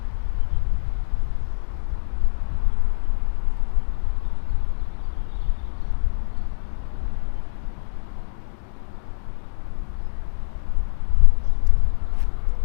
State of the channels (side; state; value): right; silent; digital silence